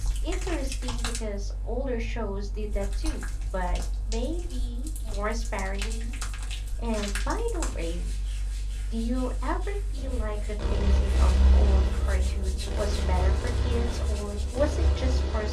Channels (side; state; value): both; identical; correlation 1.00